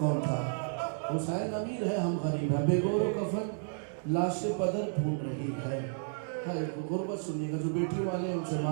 تھا. حسین امیر ہے ہم غریب ہیں. بے گور و کفن لاش پدر ڈھونڈ رہی ہے. غربت سنیے گا جو بیٹی والے ان سے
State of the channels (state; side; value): silent; left; digital silence